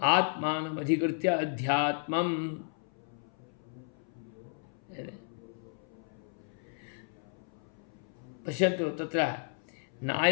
अध्यात्मं पश्यन्तु तत्र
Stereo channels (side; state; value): right; silent; 55 dB below the other